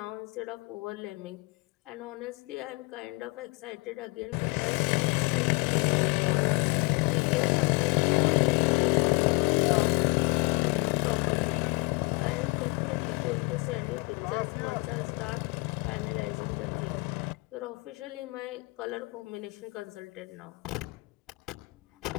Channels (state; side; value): quieter; right; 27.6 dB